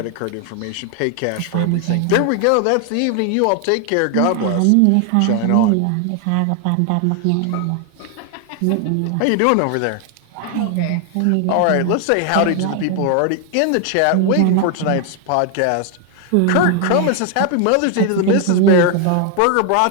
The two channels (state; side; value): different; both; correlation 0.00